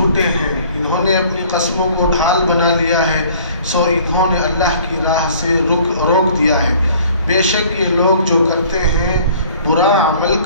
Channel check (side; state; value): both; inverted; correlation -0.53